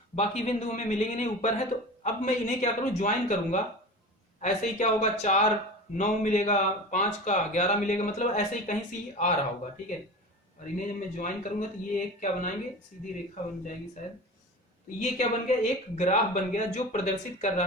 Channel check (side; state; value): both; normal; correlation 0.33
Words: बाकी बिंदु हमें मिलेंगे नहीं, ऊपर है। तो अब मैं इन्हें क्या करूं, ज्वाइन करूंगा। ऐसे ही क्या होगा, 4 9 मिलेगा, 5 का 11 मिलेगा, मतलब ऐसे ही कहीं से आ रहा होगा, ठीक है। और इन्हें जब मैं ज्वाइन करूंगा तो ये एक क्या बनाएंगे, सीधी रेखा बन जाएगी शायद। तो ये क्या बन गया, एक ग्राफ बन गया जो प्रदर्शित कर